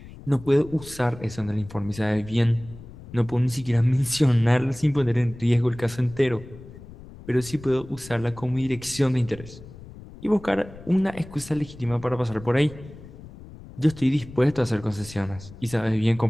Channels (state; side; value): noise; left; rumble, 17 dB below the sound